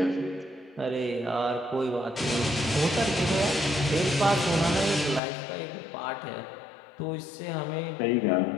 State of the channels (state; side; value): drops out; right; at 5.2 s